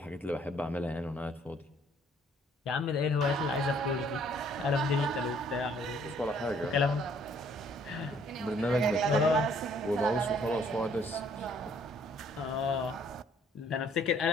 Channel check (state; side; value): normal; both; correlation 0.62